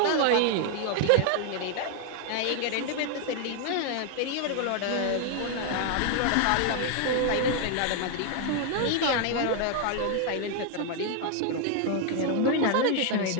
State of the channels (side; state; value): both; different; correlation 0.00